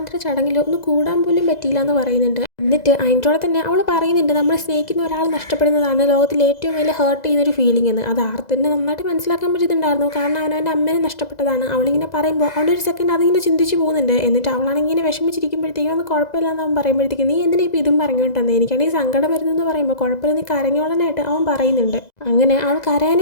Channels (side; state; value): right; late; 2.0 ms